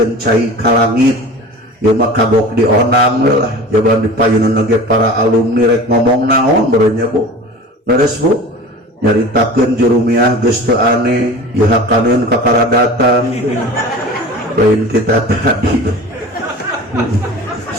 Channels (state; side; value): normal; both; correlation 0.37